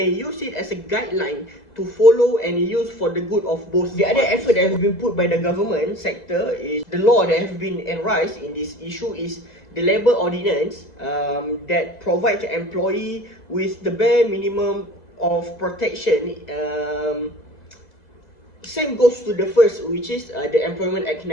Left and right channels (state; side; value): late; right; 2.0 ms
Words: use it as a guideline to follow and use for the good of both. The other effort that has been put by the government sector is the law that has been enraised in this issue is the Labour Ordinance that provides the employee with the bare minimum of protection. Same goes to the first, which is the Employment Act